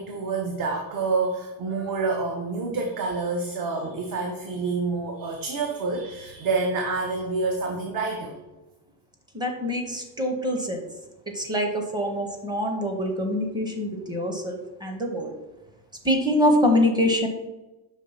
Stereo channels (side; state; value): both; normal; correlation 0.14